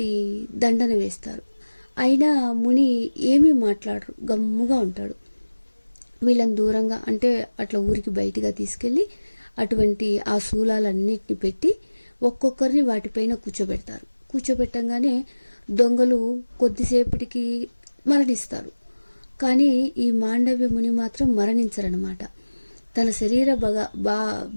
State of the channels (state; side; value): inverted; both; correlation -1.00